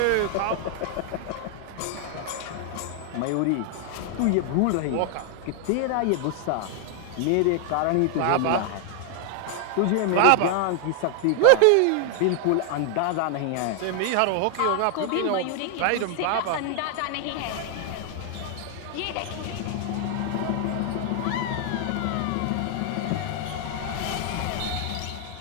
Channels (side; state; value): both; different; correlation 0.00